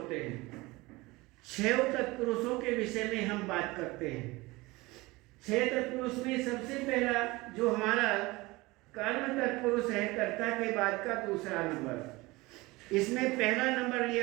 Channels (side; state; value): left; quieter; 21.9 dB